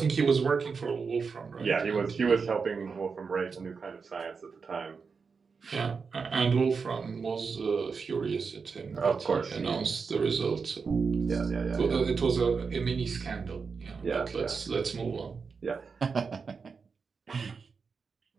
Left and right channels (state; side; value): quieter; left; 5.3 dB